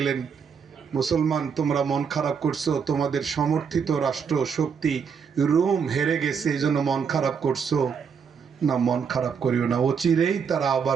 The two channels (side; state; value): left; quieter; 6.5 dB